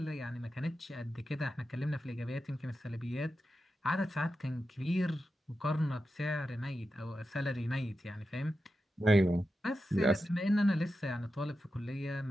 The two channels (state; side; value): normal; both; correlation 0.90